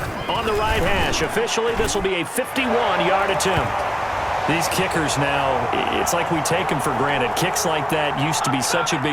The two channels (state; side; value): identical; both; correlation 1.00